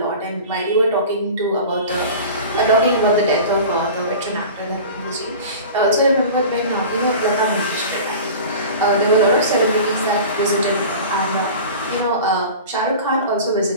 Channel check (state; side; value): inverted; both; correlation -0.37